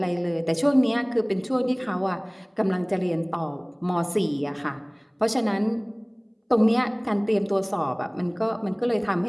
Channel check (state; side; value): identical; both; correlation 1.00